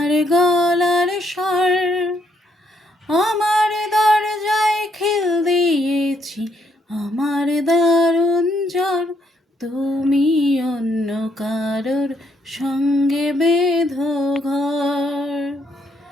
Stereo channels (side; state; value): both; normal; correlation 0.73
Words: গলার স্বর। আমার দরজায় খিল দিয়েছি, আমার দারুণ জ্বর। তুমি অন্য কারোর সঙ্গে বেঁধো ঘর,